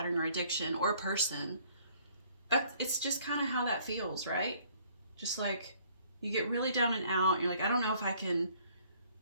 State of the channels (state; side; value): inverted; both; correlation -0.60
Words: or addiction or a person, it's just kind of how that feels, right? Just like you get really down and out. You're like, I don't know if I can